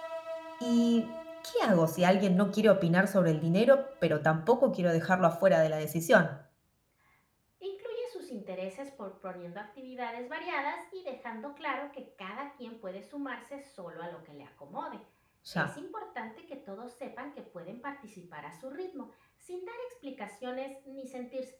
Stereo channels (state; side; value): identical; both; correlation 1.00